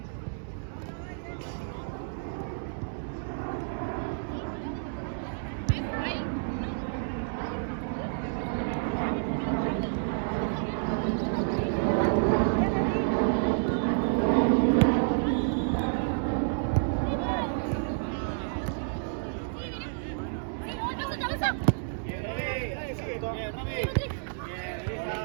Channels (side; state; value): left; silent; digital silence